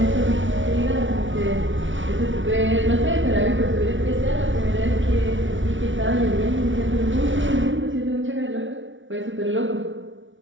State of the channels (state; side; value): late; left; 0.56 ms